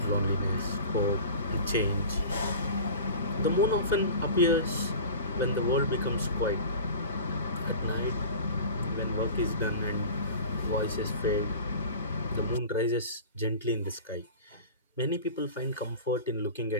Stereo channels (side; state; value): both; inverted; correlation -0.37